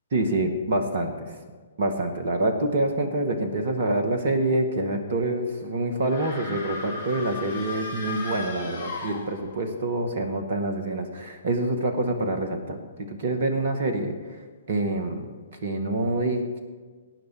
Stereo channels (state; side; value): inverted; both; correlation -0.53